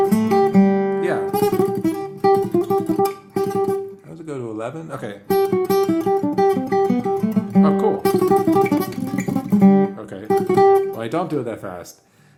Yeah. How does it go to 11? Okay. Oh, cool. Okay. Well, I don't do it that fast.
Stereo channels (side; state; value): both; identical; correlation 1.00